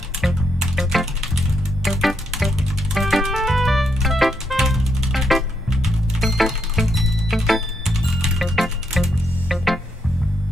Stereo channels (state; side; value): normal; both; correlation 0.78